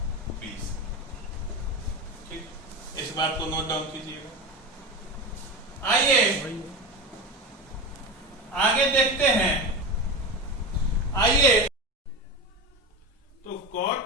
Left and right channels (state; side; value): normal; both; correlation 0.23